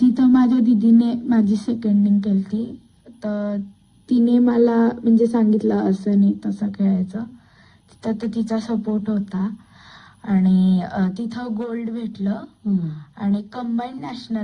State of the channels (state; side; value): identical; both; correlation 1.00